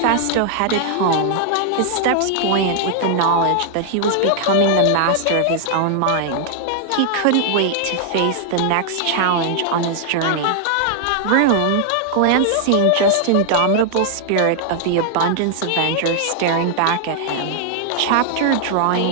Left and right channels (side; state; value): both; different; correlation 0.00